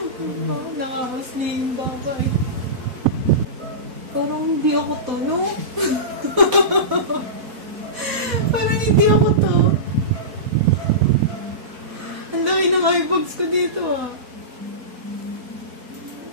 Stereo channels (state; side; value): late; left; 4.1 ms